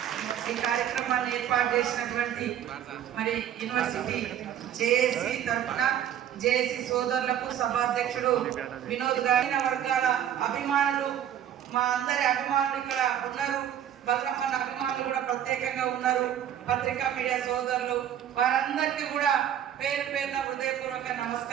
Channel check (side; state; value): left; quieter; 10.2 dB